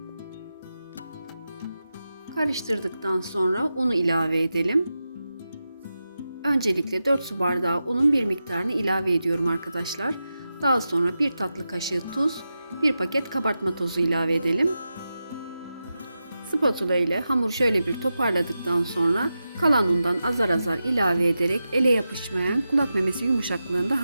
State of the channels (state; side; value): inverted; both; correlation -0.91